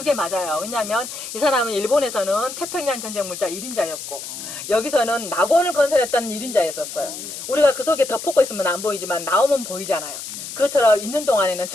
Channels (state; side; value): noise; left; hiss, 9 dB below the sound